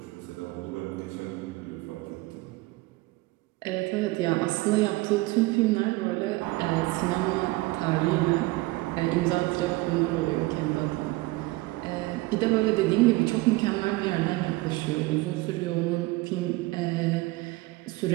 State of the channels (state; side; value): quieter; left; 21.3 dB